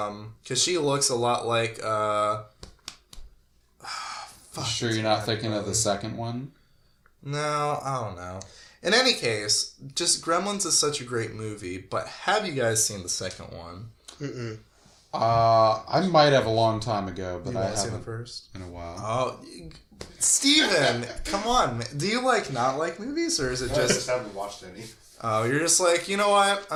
Because she looks a lot like, Sure you're not thinking of the second one? No, I don't know. In any case, just Gremlins is such a great movie, but have you guys seen the second one? Mm-mm. I might have a long time ago, but You I haven't haven't seen the first? in a while. Oh, Steven, come on, man. Do you, not like movies, or is it I just... just haven't watched any. Oh, you're just like, you know what?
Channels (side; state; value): both; identical; correlation 1.00